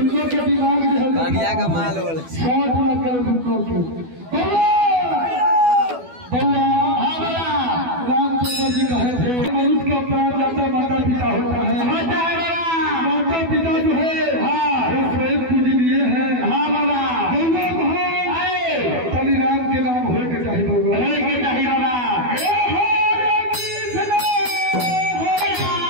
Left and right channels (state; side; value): late; left; 12 ms